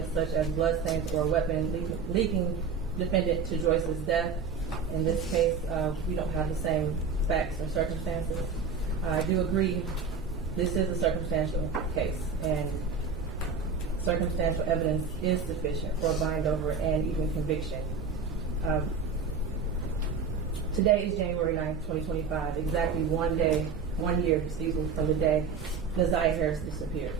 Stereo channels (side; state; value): left; quieter; 5.2 dB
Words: such as bloodstains or a weapon leading defendant to Joyce's death." In this case, we don't have the same facts or circumstances. I do agree this is a circumstantial case, and circumstantial evidence is sufficient for a bind over and even conviction. Today is January 9th, 2025, exactly 1 year, from the day Naziah Harris disappeared.